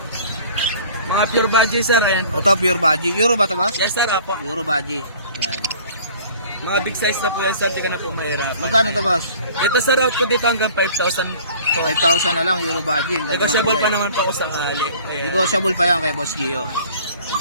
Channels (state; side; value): inverted; both; correlation -0.49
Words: Mga pure budget sir, ayan. Ito pure baji. Euro ba to boss? Yes sir, apo. Euro baji. Yan. Mga big size na po yan sir, di ka na po mahirap. Magkano to boss? Ito sir, out ko dito hanggang 5,000. 5,000 na lang Euro baji. Negotiable pa naman po ako sakali. Ayan. Negotiable pa yan kay Boss Gio.